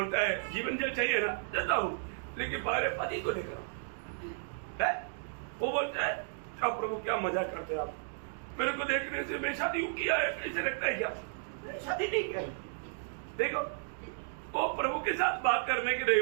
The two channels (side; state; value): left; silent; digital silence